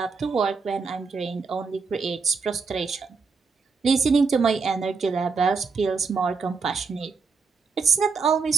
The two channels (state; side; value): quieter; left; 4.9 dB